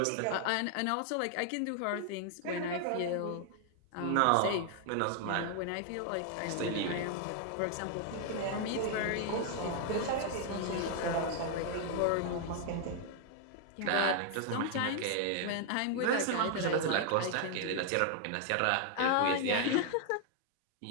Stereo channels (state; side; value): different; both; correlation 0.00